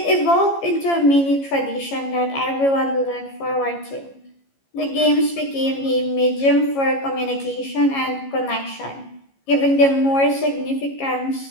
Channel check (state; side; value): late; right; 15 ms